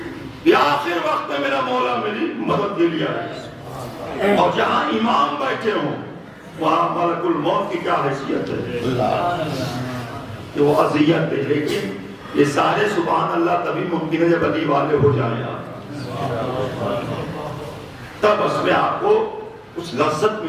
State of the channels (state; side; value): identical; both; correlation 1.00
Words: کہ آخر وقت میں میرا مولا میری مدد کے لیے آئے. اور جہاں امام بیٹھے ہوں وہاں ملک الموت کی کیا حیثیت ہے کہ وہ اذیت دے. لیکن یہ سارے سبحان اللہ تبھی ممکن ہے جب علی والے ہو جائیں آپ, تب اس میں آپ کو کچھ لذت